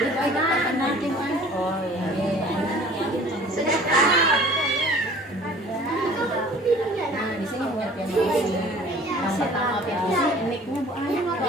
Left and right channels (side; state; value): both; normal; correlation 0.49